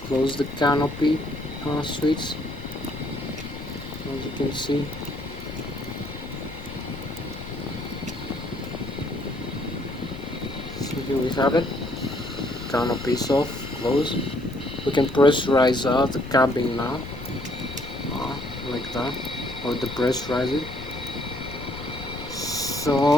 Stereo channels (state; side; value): noise; left; rumble, 12 dB below the sound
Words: close the canopy switch, as you can see. So here we have it, canopy is off, closed. We can pressurize the cabin now, like that, or depressurize it.